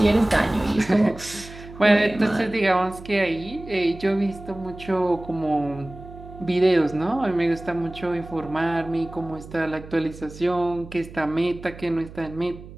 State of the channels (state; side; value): noise; right; hum, 16 dB below the sound